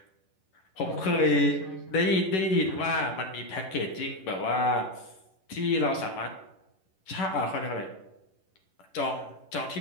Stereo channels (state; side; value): late; right; 11 ms